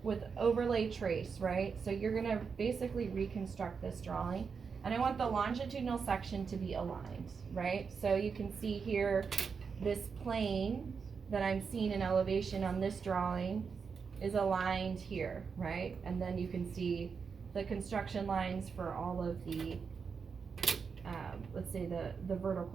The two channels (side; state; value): left; quieter; 5.7 dB